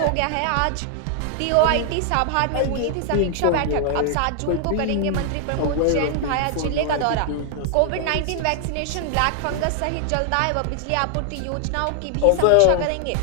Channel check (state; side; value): different; both; correlation 0.00